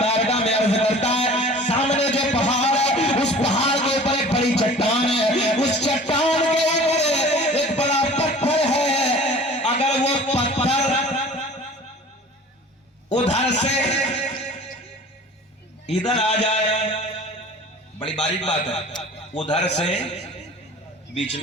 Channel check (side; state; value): both; normal; correlation 0.43